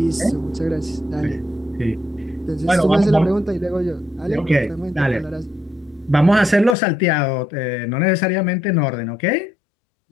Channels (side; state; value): right; drops out; at 6.8 s